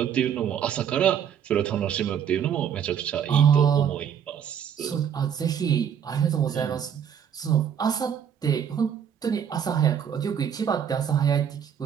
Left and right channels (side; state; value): left; quieter; 8.4 dB